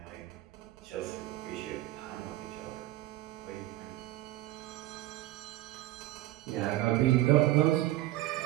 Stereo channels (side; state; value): left; quieter; 16.4 dB